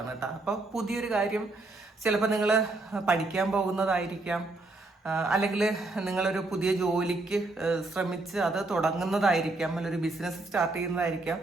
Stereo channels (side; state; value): left; quieter; 3.1 dB